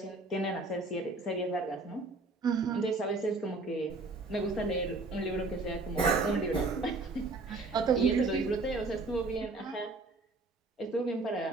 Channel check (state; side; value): quieter; left; 3.3 dB